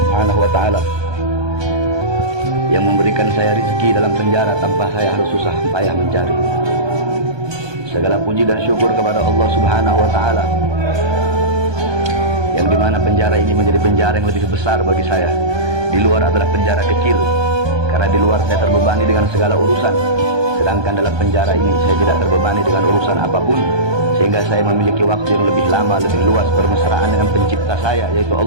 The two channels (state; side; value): late; left; 1.2 ms